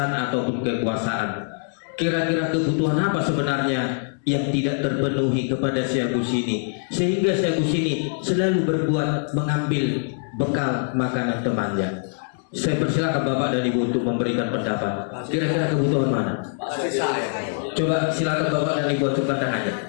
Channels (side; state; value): right; silent; digital silence